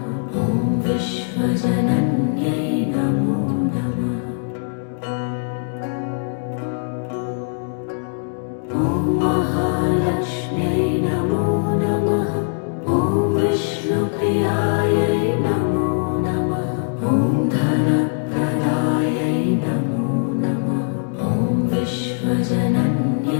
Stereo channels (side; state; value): right; silent; 65 dB below the other